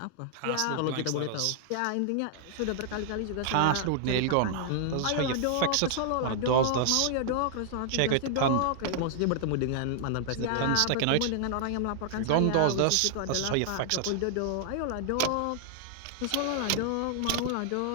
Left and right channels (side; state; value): both; different; correlation 0.00